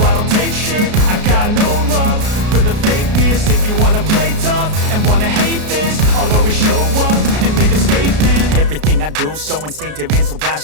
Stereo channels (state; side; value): late; left; 33 ms